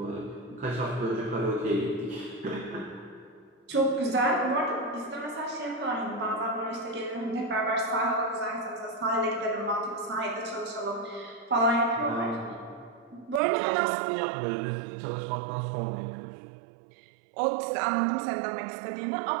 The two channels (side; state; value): left; drops out; at 13.4 s